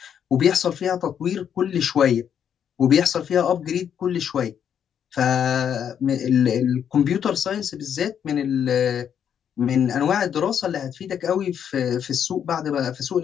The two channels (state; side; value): quieter; right; 8.6 dB